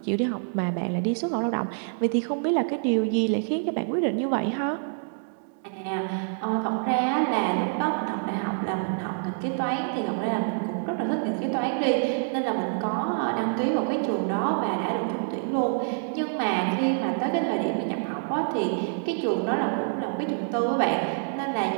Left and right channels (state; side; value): silent; left; digital silence